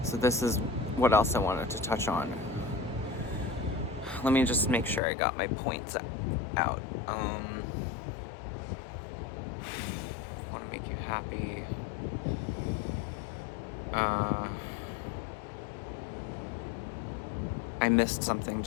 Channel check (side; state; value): right; drops out; at 5.0 s